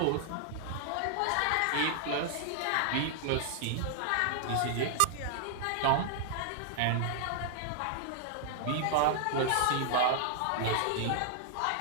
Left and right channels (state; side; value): different; both; correlation -0.01